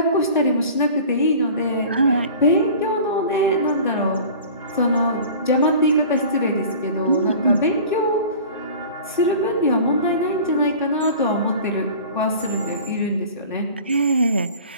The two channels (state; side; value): inverted; both; correlation -0.42